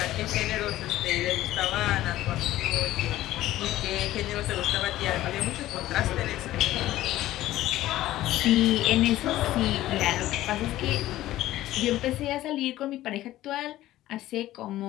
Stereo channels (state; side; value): quieter; right; 15.0 dB